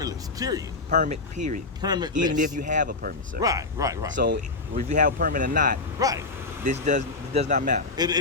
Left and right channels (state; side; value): quieter; right; 3.5 dB